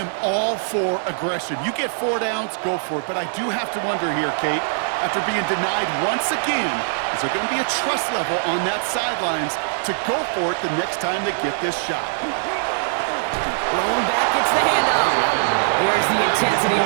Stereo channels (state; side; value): silent; left; digital silence